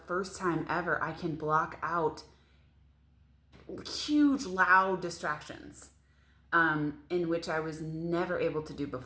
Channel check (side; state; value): both; identical; correlation 1.00